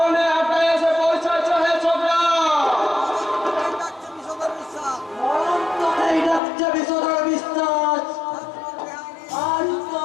আটকা এসে পৌঁছাচ্ছ হে ছোকরা। এই ডাকছে বিষধর বিশ্বাস। আজ তো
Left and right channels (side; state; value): right; drops out; at 6.4 s